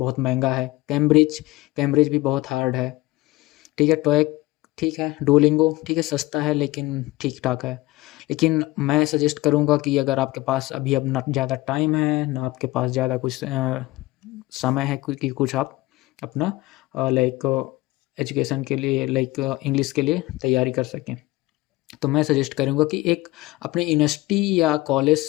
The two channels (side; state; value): right; quieter; 19.7 dB